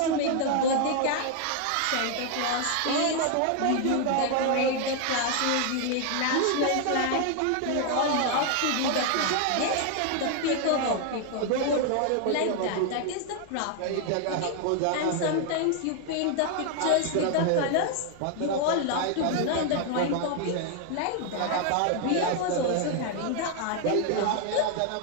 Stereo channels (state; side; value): different; both; correlation 0.00